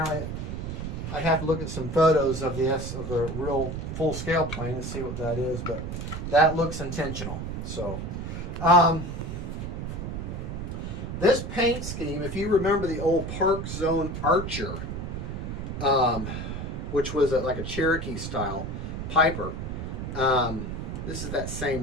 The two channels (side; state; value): right; noise; rumble, 5 dB below the sound